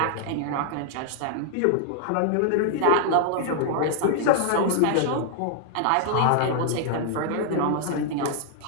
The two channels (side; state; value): both; different; correlation 0.00